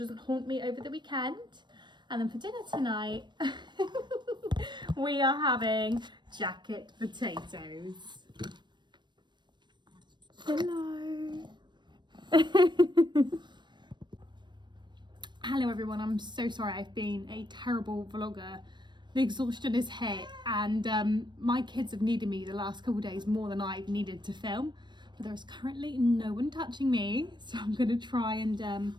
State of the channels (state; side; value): late; left; 0.22 ms